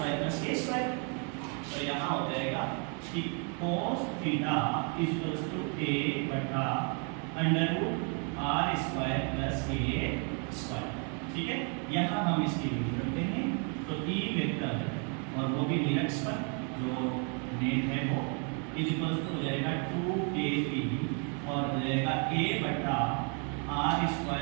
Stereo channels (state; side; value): quieter; left; 38.8 dB